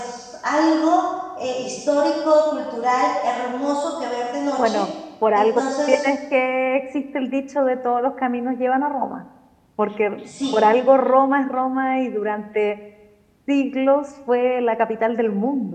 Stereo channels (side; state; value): both; identical; correlation 1.00